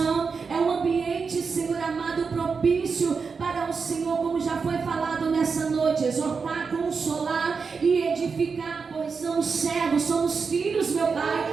é um ambiente, Senhor amado, propício para o Senhor, como já foi falado nessa noite, exortar, consolar e edificar, pois somos servos, somos filhos, meu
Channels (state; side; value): quieter; left; 5.2 dB